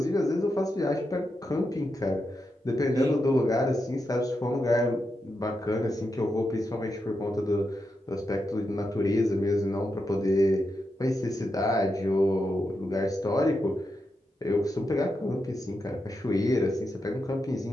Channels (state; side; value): normal; both; correlation 0.86